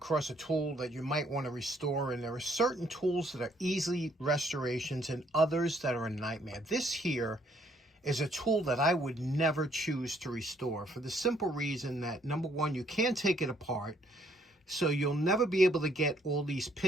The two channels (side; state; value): both; normal; correlation 0.67